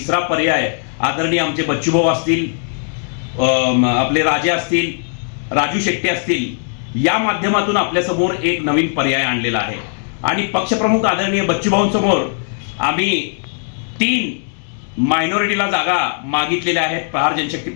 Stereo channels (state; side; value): silent; right; digital silence